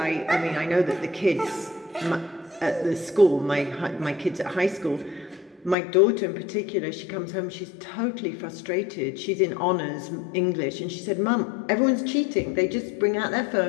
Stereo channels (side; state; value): right; drops out; at 5.8 s